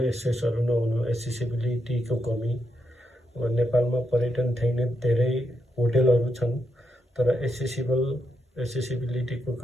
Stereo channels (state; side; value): normal; both; correlation 0.82